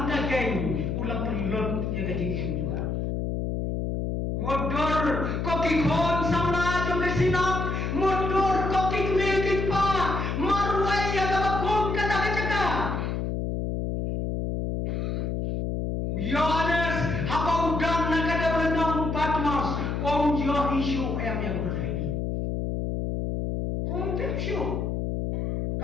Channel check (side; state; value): left; noise; hum, 1 dB below the sound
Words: kageng ulah pelot ya kajing juga modor kokikon sama jom kesinap modor kokik milik pa marway ya kabakon kata-kata Yohanes haba udang nakada benang Patmos om jo isu yang berhenti om tepsyo